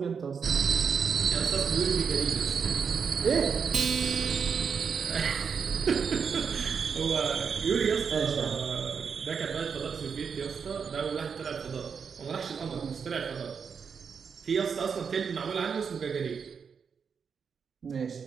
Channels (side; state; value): left; quieter; 6.3 dB